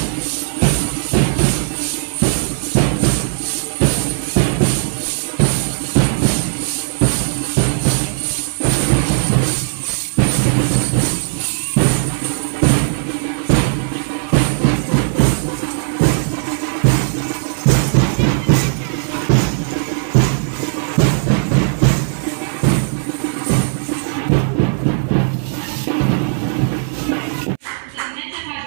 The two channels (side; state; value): left; silent; 67 dB below the other